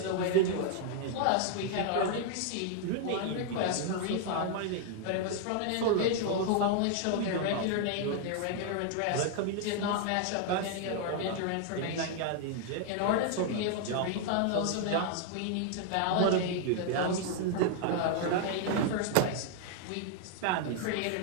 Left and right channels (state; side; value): different; both; correlation 0.00